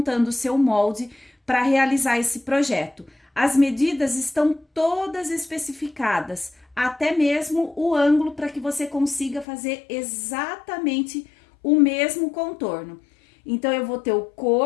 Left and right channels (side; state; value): right; drops out; at 9.5 s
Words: o seu molde para realizar esse projeto. As medidas estão todas especificadas, até mesmo o ângulo para que você consiga fazer exatamente o mesmo contorno. Então, eu vou ter o